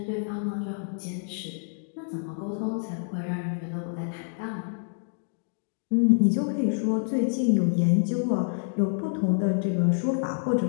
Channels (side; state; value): right; silent; digital silence